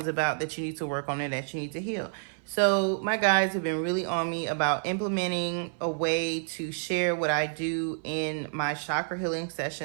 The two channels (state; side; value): silent; left; 56 dB below the other